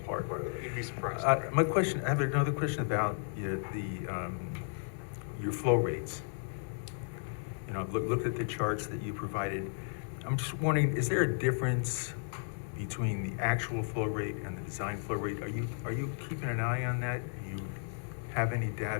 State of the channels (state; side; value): silent; right; digital silence